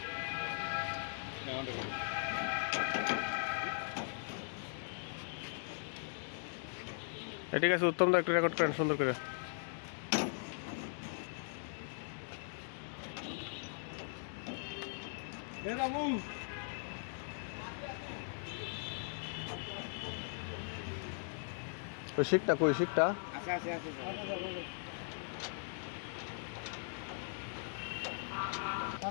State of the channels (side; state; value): right; silent; digital silence